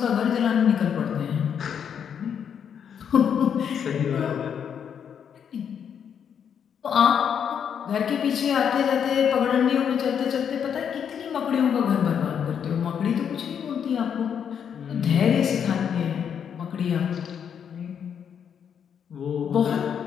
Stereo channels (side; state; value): right; quieter; 7.9 dB